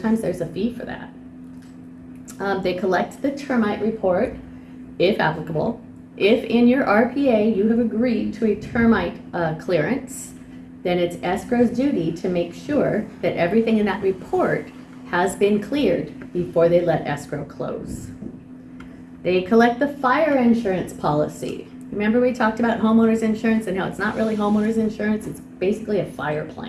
there's a fee for that. They collect the termite report, if applicable. If in your RPA you have agreed to a termite clearance, then it's escrow's duty to make sure that everything in that report has been cleared before they let escrow close. They collect the fire insurance policy. Remember we talked about homeowners insurance and how it's not really homeowners insurance, it's basically a fire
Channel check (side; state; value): both; identical; correlation 1.00